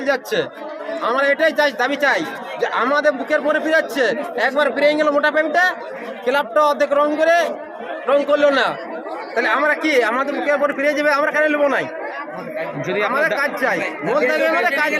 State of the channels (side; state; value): both; identical; correlation 1.00